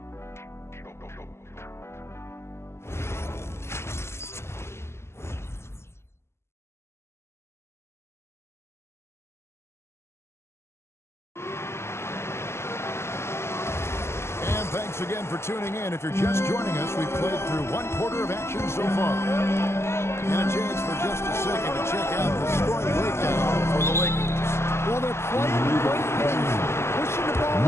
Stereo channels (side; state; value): right; late; 0.12 ms